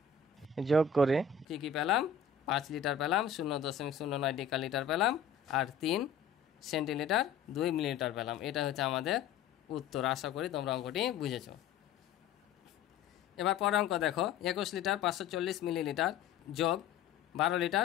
যোগ করে কি কি পেলাম, 5 লিটার পেলাম, 0.09 ডেকালিটার পেলাম, আর 3 সেন্টিলিটার 2 মিলিলিটার পেলাম। এটা হচ্ছে আমাদের উত্তর। আশা করি তোমরা অঙ্কটি বুঝেছো। এবার পরের অঙ্ক দেখো, 21 লিটার 540 মিলিলিটার যোগ 12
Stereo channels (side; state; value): right; quieter; 6.8 dB